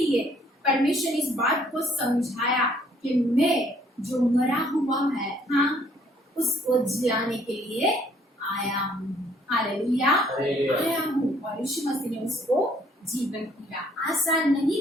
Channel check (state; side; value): normal; both; correlation 0.63